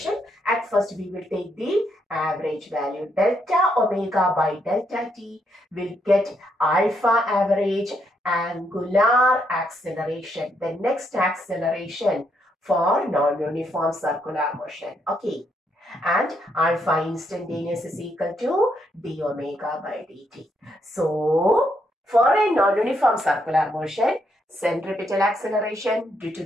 At first, we will take the average value. Delta omega by delta t will get alpha average angular acceleration. The next acceleration for non-uniform circular motion. Okay. And alpha instantaneous is equal to d omega by dt. So, for a non-uniform circular motion, centripetal acceleration due to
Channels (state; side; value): normal; both; correlation 0.76